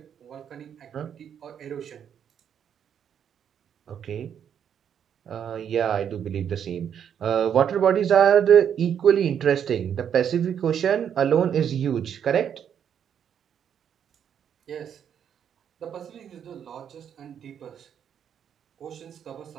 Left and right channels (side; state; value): left; quieter; 8.6 dB